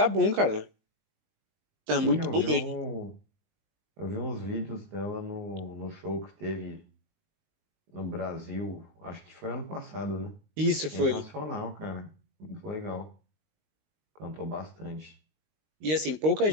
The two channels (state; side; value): late; left; 19 ms